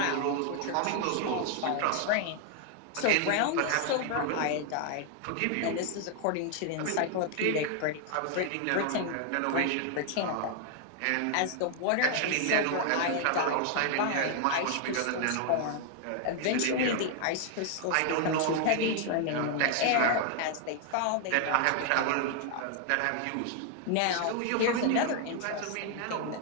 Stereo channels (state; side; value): different; both; correlation 0.00